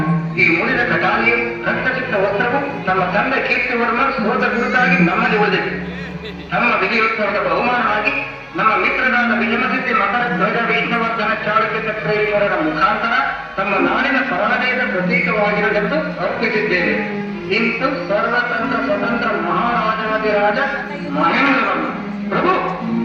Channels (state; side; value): identical; both; correlation 1.00